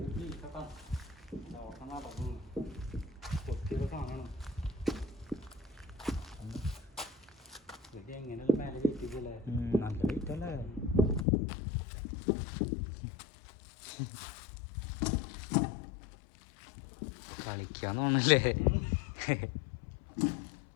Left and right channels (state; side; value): drops out; right; at 11.2 s